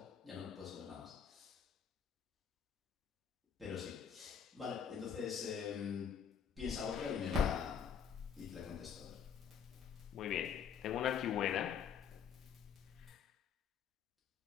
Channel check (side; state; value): right; quieter; 7.6 dB